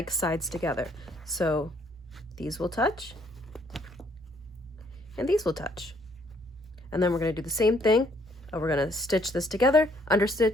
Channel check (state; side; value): normal; both; correlation 0.66